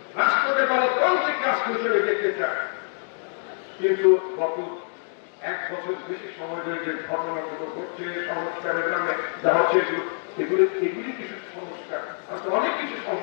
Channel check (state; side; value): silent; right; 61 dB below the other